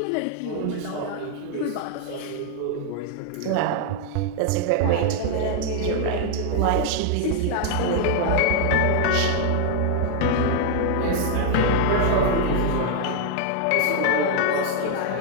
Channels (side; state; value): both; different; correlation 0.00